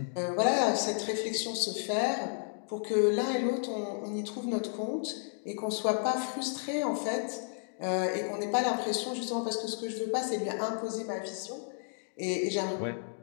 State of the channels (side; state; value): right; silent; digital silence